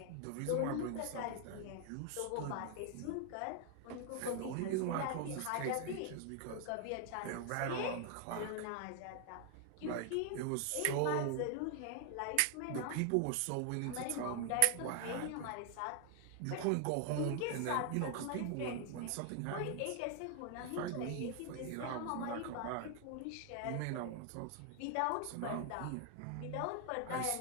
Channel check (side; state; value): both; different; correlation 0.00